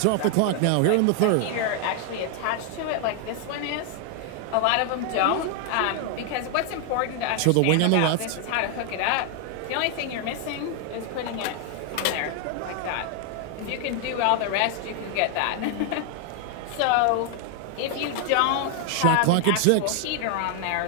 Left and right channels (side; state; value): both; different; correlation 0.00